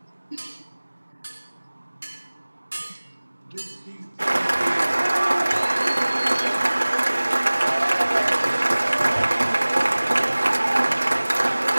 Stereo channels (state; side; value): inverted; both; correlation -1.00